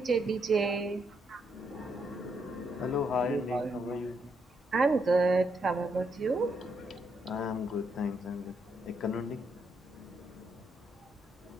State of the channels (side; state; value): both; normal; correlation 0.77